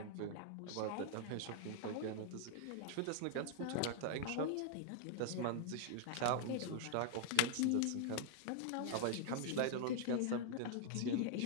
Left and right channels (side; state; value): both; different; correlation 0.00